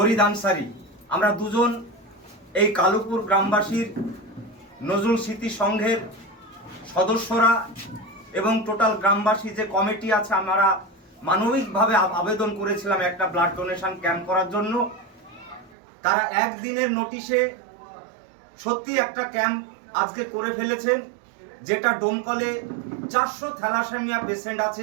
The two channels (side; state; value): left; drops out; at 15.8 s